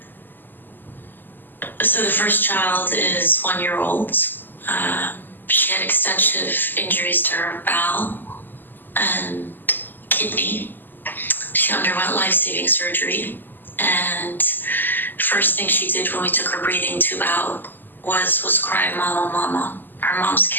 So the first child is 1-year-old. She had extensive injuries to her bowel and kidney. She underwent life-saving surgery, and first thing she did when we took her breathing tube out was cry, "Mama, mama." Her mom's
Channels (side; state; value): right; late; 0.091 ms